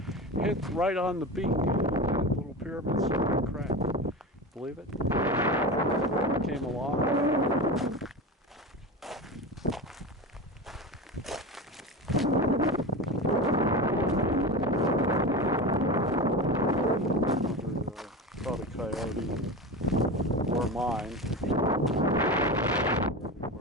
Hit right on the beak, that little pyramid started to crack. Believe it? Came along. Probably coyote or mine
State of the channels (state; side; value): normal; both; correlation 0.25